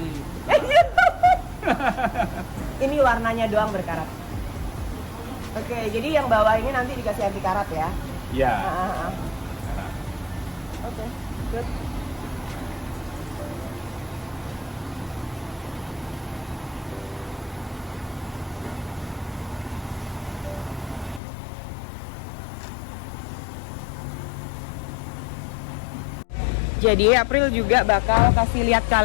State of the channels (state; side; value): drops out; right; at 21.2 s